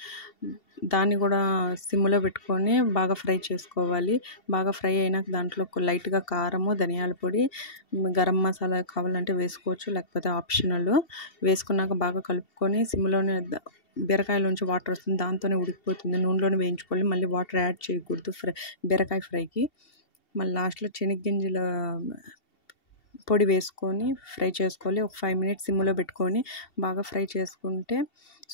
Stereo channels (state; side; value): late; right; 2.7 ms